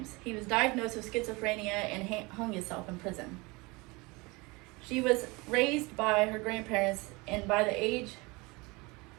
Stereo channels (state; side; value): quieter; left; 25.2 dB